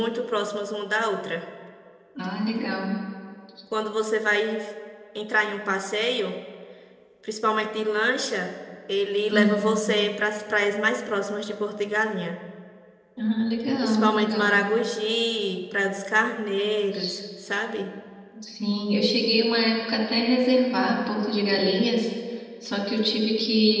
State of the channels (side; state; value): both; identical; correlation 1.00